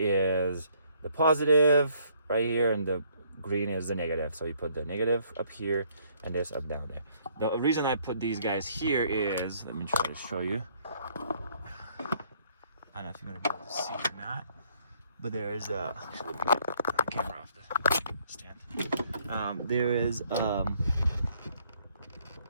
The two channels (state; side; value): inverted; both; correlation -0.65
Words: the positive right here, and the green is the negative. So you put the negative up here and this up down there. The reason I put these guys here is, let me try to show you. I don't know if you're gonna be able to see or not, but there is a, actually, the camera off the stand. There is